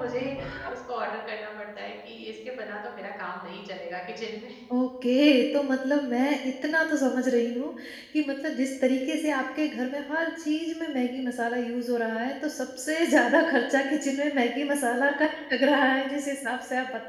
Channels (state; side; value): identical; both; correlation 1.00